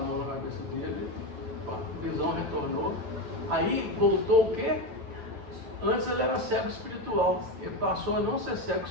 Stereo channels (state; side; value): late; left; 8.9 ms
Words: na cabeça dele, a visão retornou. Aí voltou o quê? Antes ele era cego espiritual, ele passou a não ser cego